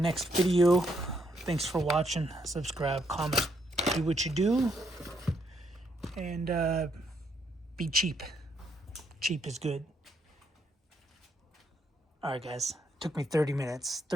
video. Thanks for watching. Subscribe, comment, do what you do, and be cheap. Cheap is good. Alright, guys. Took me 32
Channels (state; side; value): normal; both; correlation 0.74